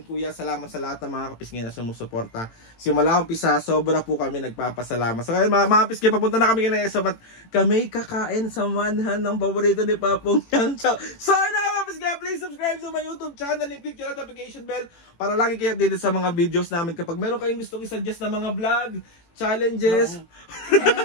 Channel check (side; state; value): right; late; 18 ms